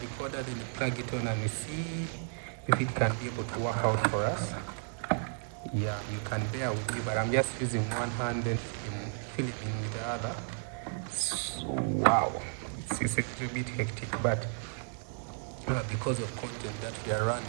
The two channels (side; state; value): left; silent; 56 dB below the other